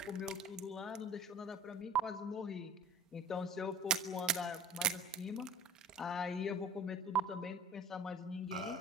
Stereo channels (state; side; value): normal; both; correlation 0.42